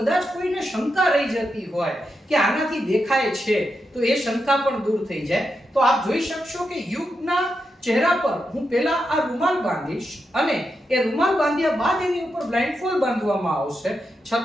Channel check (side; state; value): both; normal; correlation 0.86